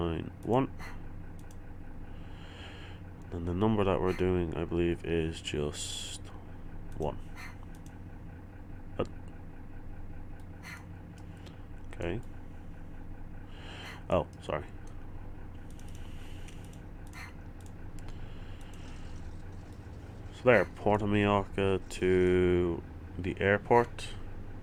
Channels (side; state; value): both; identical; correlation 1.00